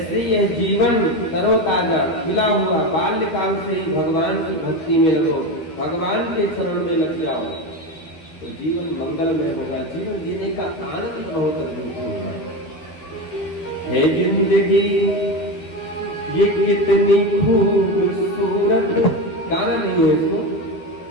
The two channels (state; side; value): late; right; 12 ms